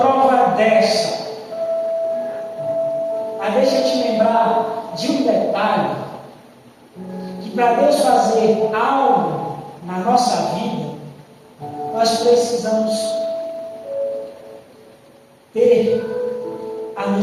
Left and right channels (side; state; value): both; identical; correlation 1.00